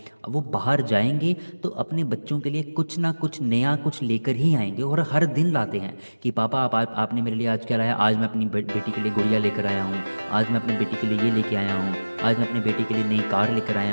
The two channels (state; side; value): inverted; both; correlation -1.00